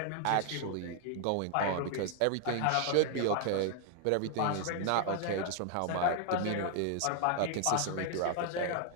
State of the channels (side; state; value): both; different; correlation 0.00